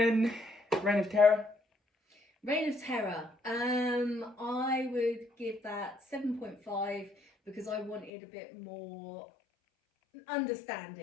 Reign of Terror. Reign of Terror. I would give that 7.5 because I wanted a bit more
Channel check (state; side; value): drops out; right; at 8.1 s